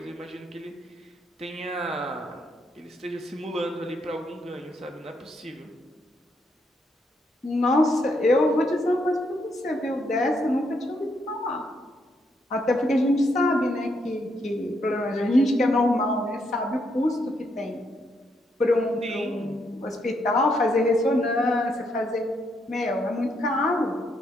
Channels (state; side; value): normal; both; correlation 0.76